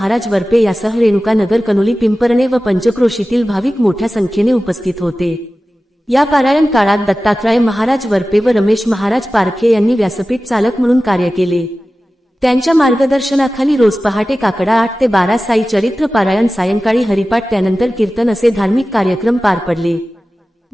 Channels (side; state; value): both; normal; correlation 0.95